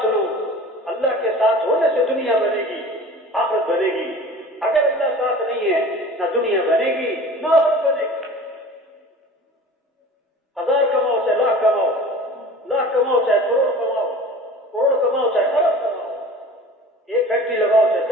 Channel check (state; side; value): normal; both; correlation 0.41